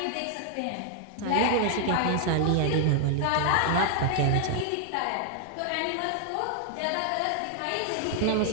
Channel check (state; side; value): different; both; correlation 0.00